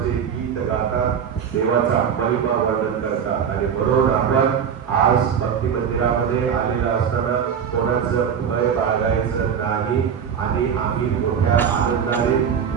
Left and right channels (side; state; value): left; quieter; 7.7 dB